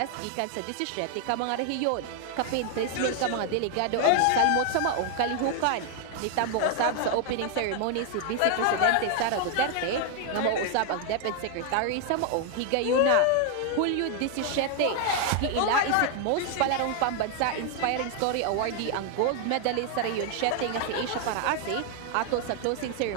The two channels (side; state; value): both; different; correlation 0.00